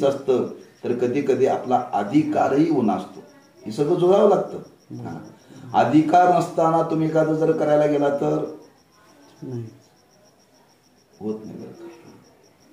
असतं, तर कधी कधी आपला अधिकारही उणा असतो. हे सगळं जुळावं लागतं. अधिकार नसताना तुम्ही एखादं जर करायला गेला तर होत नाही बरं का.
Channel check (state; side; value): identical; both; correlation 1.00